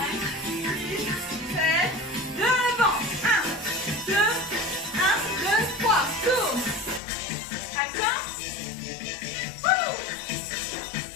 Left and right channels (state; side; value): drops out; right; at 7.0 s